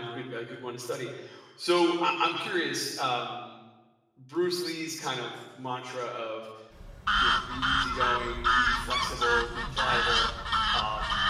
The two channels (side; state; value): both; identical; correlation 1.00